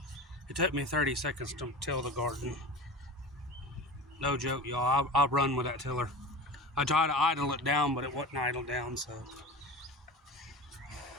It took me 30 seconds to till the garden. No joke, y'all. I'll run with that tiller. I tried to idle it down, but it wouldn't idle down, so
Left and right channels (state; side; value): normal; both; correlation 0.33